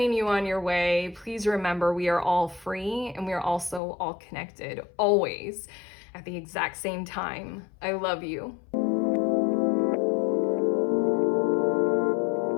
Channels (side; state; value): right; drops out; at 3.8 s